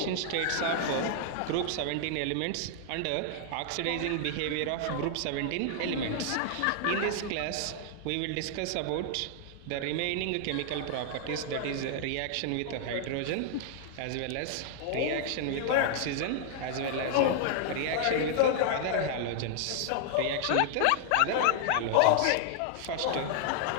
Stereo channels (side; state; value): both; different; correlation 0.00